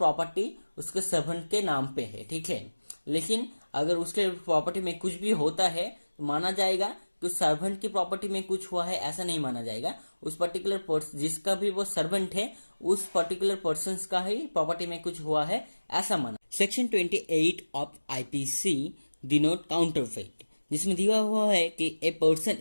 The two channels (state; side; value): inverted; both; correlation -1.00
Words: उसके सर्वेंट के नाम पे है, ठीक है, लेकिन अगर उसके प्रॉपर्टी में कुछ भी होता है तो माना जाएगा कि सर्वेंट की प्रॉपर्टी में कुछ हुआ है, ऐसा नहीं माना जाएगा। उस पर्टिकुलर पर्सन जिसका भी वो सर्वेंट है उस पर्टिकुलर पर्सन का ही प्रॉपर्टी में कुछ हुआ है, ऐसा माना। Section 28 of IPC denote counterfeit, जिसमें दिया हुआ है कि a person